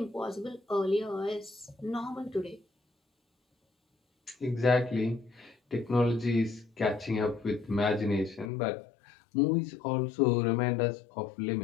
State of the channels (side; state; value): right; drops out; at 8.5 s